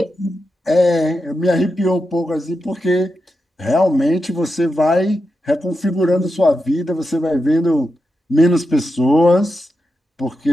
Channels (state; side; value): normal; both; correlation 0.88